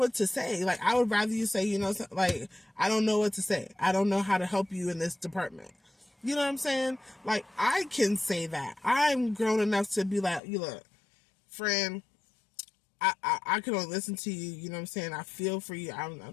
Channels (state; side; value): drops out; right; at 10.4 s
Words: to say. Like, I would rather you say, you know, like, I don't know what to say. I don't know how to help you in this department. You know what I'm saying? Like, I can say that. I'm grown enough to be like, you look, friend, I can only listen to you. You know what I'm saying? I feel for you.